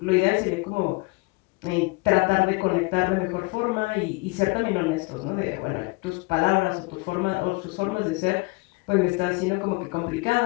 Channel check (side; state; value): right; quieter; 26.9 dB